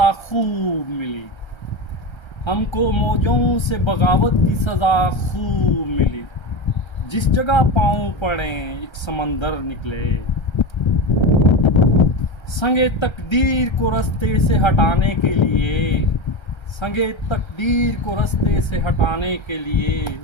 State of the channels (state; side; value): late; right; 1.3 ms